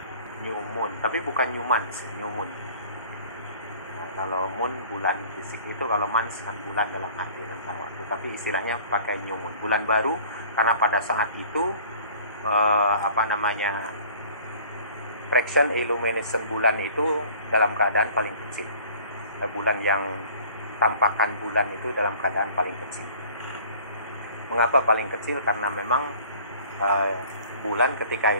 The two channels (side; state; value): both; inverted; correlation -0.50